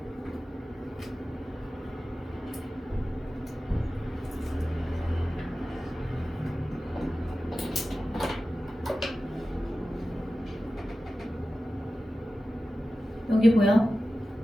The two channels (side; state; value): both; normal; correlation 0.94